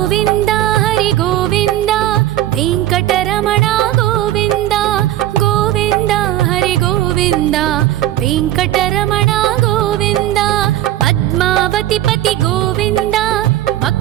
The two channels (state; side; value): quieter; left; 13.7 dB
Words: हरि गोविन्द वेङ्कटरमण गोविन्द गोविन्द हरि गोविन्द वेङ्कटरमण गोविन्द। पद्मावति पति गोविन्द